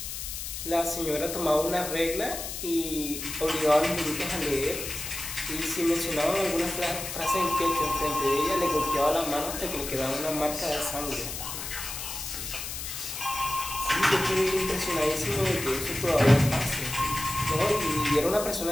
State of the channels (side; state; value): left; noise; hiss, 6 dB below the sound